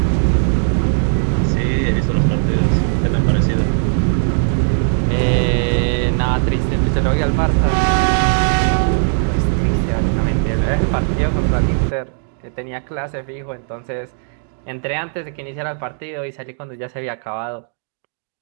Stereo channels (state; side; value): silent; left; 67 dB below the other